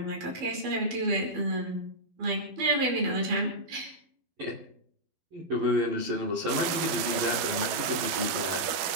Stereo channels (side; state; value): left; late; 12 ms